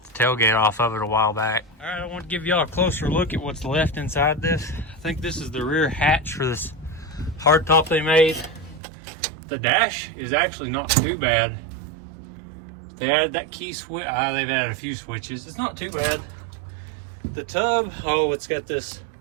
the tailgate off of it a while back. All right, I want to give y'all a closer look at what's left inside this. I think this is the rear hatch for this hardtop they made. The dash is actually not too bad. They added that key switch. They've added a few switches. It's not too bad. The tub, oh, it's got this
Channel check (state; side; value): drops out; left; at 8.8 s